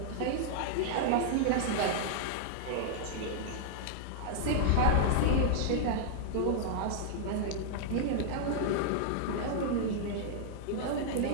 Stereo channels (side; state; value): both; different; correlation -0.01